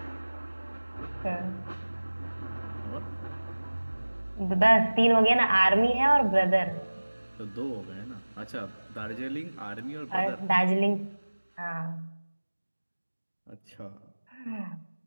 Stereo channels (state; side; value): inverted; both; correlation -1.00